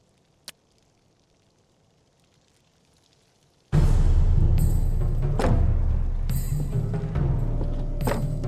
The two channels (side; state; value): both; identical; correlation 1.00